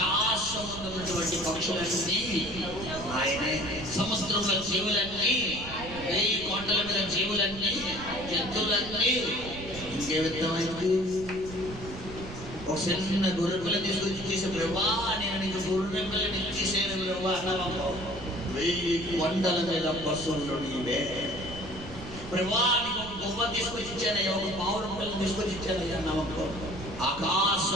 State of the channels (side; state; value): right; noise; rumble, 12 dB below the sound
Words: ఉన్నటువంటి పక్షులన్నీ ఆయనే, సముద్రంలో జీవులన్నీ, 1000 కోటల మీద జీవులన్నీ, జంతువులన్నీ. ఇంకే విధమైంది? ఒక చిన్న గొర్రెపిల్ల తీసుకొచ్చి చేసే, ప్రభా నేను నీకు గొర్రెపిల్లని ఇచ్చేసాను ప్రభా అన్నావా? 1000 కొండల మీద పశువులు నీవే. ప్రభువా నీకు ఒక గొప్ప తీసుకొచ్చి ఇచ్చానయ్యా, ఒక పావురం పిల్లలు తీసుకొచ్చి ఇచ్చానయ్యా. నమ్మకం